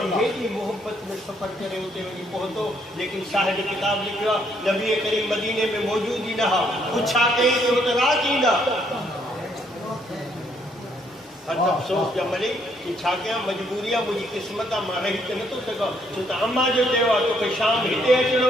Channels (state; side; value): normal; both; correlation 0.70